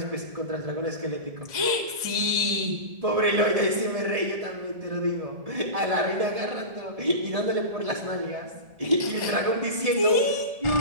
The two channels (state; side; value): late; left; 1.7 ms